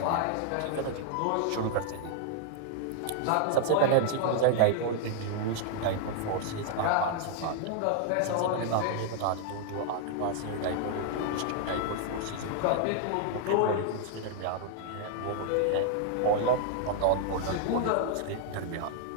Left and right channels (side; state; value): both; different; correlation 0.00